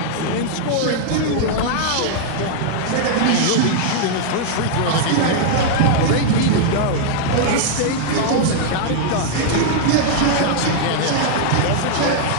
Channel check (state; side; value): different; both; correlation -0.01